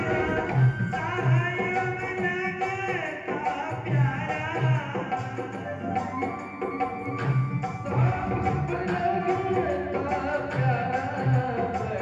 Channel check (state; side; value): identical; both; correlation 1.00